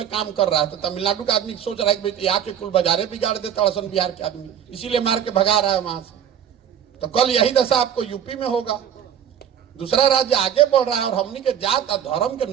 काम कर रहा है। तो तमिलनाडु का आदमी सोच रहा है कि यहाँ के कुल बाजारे बिगाड़ देता असन बिहार के आदमी, इसीलिए मार के भगा रहा है वहां से। तो कल यही दशा आपको यूपी में होगा। दूसरा राज्य आगे बढ़ रहा है और हमनी के जात और धर्म के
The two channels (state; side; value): quieter; left; 9.2 dB